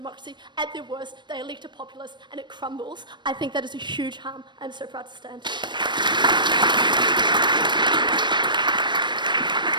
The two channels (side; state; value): left; late; 0.22 ms